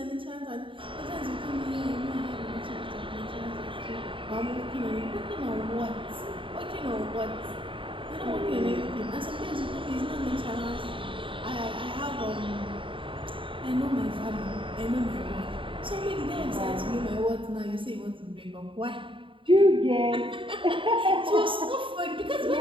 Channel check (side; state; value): left; late; 0.25 ms